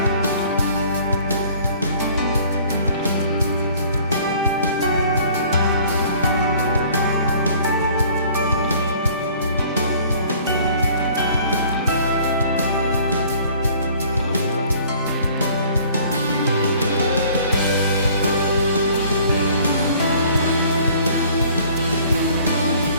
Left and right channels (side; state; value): both; inverted; correlation -0.53